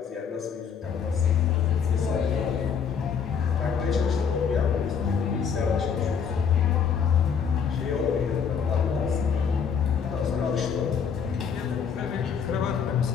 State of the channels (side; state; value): right; quieter; 6.8 dB